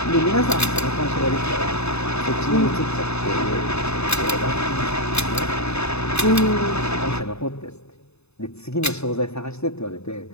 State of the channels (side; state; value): right; late; 0.80 ms